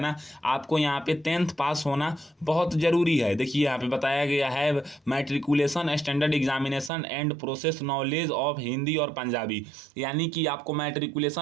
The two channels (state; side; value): drops out; left; at 6.9 s